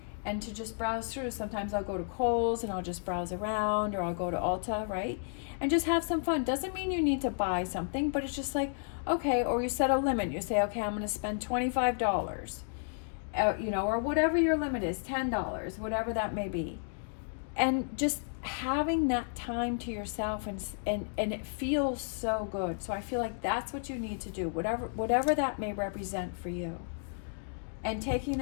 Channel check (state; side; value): silent; right; digital silence